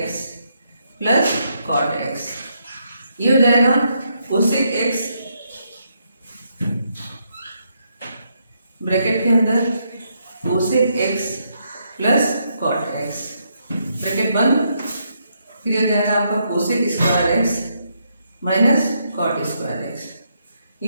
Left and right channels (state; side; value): inverted; both; correlation -0.77